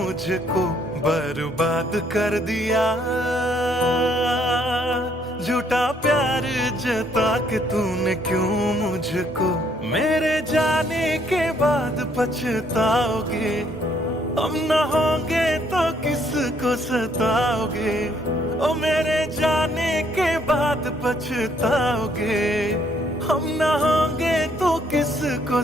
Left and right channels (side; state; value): both; normal; correlation 0.68